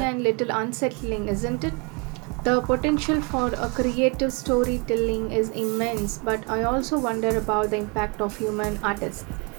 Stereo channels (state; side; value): quieter; left; 32.1 dB